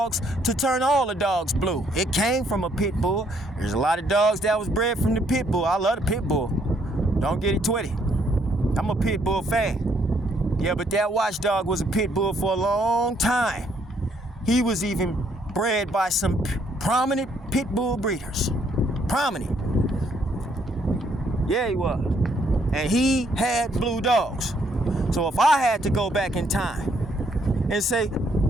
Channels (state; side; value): normal; both; correlation 0.69